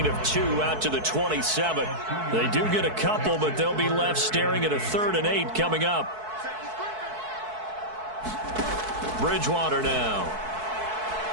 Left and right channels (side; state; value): left; late; 4.6 ms